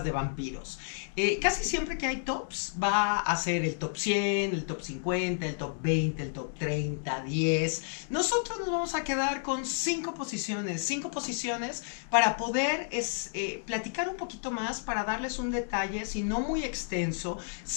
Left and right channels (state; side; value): silent; right; digital silence